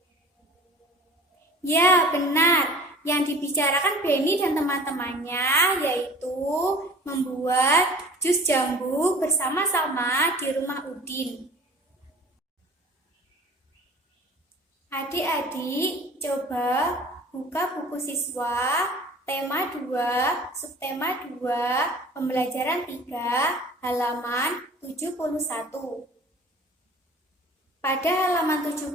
Ya, benar. Yang dibicarakan Beni dan teman-temannya yaitu membuat jus jambu bersama-sama di rumah Udin. Adik-adik, coba buka buku siswa tema 2, subtema 2, pembelajaran 3, halaman 71. Pada halaman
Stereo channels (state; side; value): normal; both; correlation 0.44